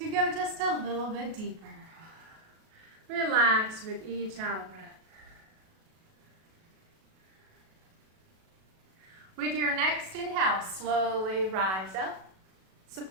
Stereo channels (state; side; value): late; left; 37 ms